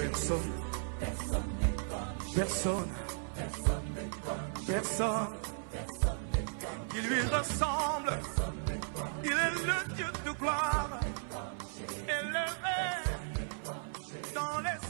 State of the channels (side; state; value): left; silent; 54 dB below the other